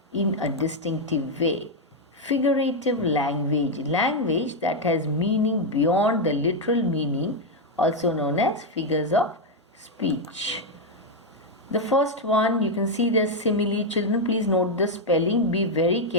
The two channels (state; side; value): normal; both; correlation 0.02